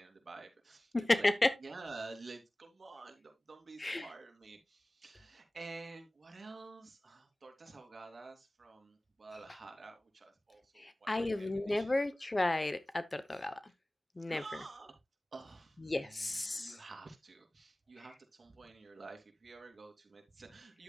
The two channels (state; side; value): normal; both; correlation 0.98